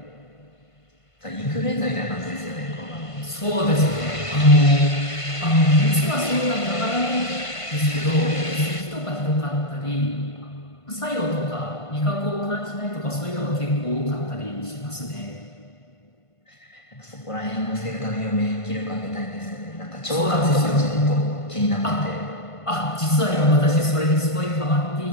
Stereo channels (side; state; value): right; late; 1.5 ms